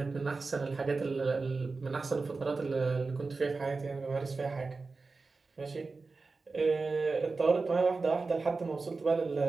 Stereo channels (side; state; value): left; quieter; 4.0 dB